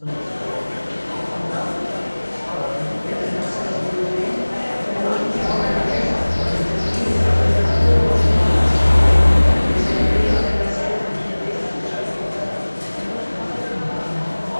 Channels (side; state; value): both; inverted; correlation -1.00